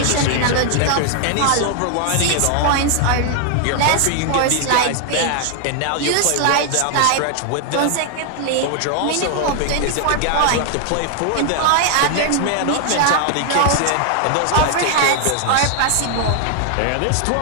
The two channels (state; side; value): different; both; correlation 0.00